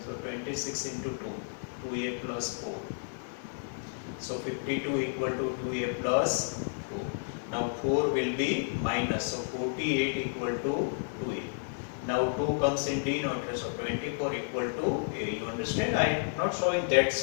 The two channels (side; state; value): right; silent; digital silence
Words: So 26 into 2, 2a plus 4. So 52 equal to 2a plus 4. Now 4 will be minus. So 48 equal to 2a. Now 2 comes in denominator. So 24 equal to a. You understand? I am not showing that